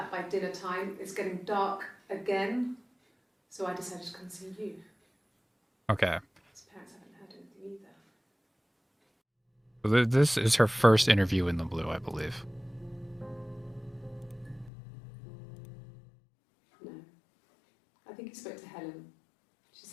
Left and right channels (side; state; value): right; drops out; at 14.7 s